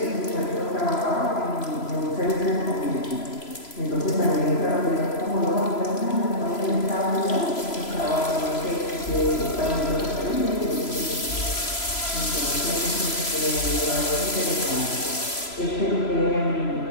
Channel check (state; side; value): late; right; 3.0 ms